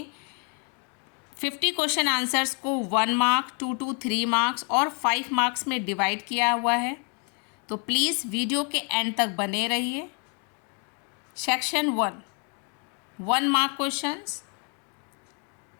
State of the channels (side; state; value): right; quieter; 37.3 dB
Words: 50 क्वेश्चन आंसर्स को 1 मार्क, 2 to 3 मार्क्स और 5 मार्क्स में डिवाइड किया हुआ है। तो प्लीज़ वीडियो के एंड तक बने रहिए। Section 1 mark questions.